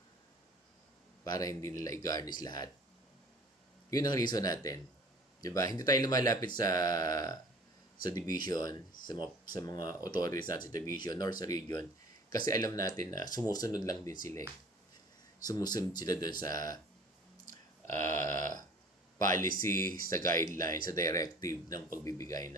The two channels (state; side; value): normal; both; correlation 0.47